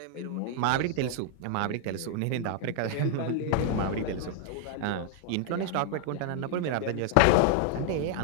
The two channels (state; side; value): different; both; correlation 0.00